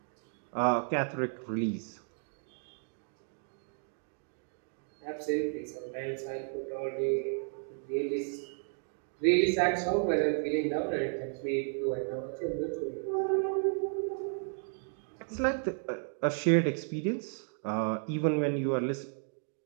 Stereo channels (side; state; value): left; silent; 56 dB below the other